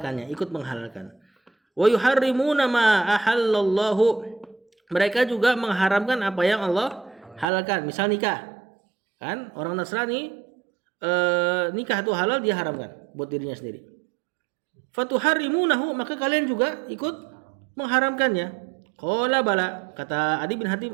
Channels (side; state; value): left; drops out; at 7.5 s